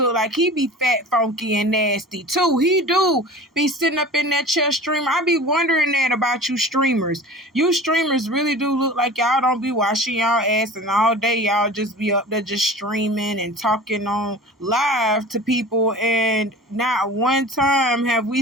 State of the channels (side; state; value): both; normal; correlation 0.38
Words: like he be fat, funky, and nasty too. He do be sitting up in that chair streaming. I be wondering that about you streamers. You streamers really do look like y'all don't be washing y'all ass, and all day y'all just be up there just streaming and talking on live to people. And not one time have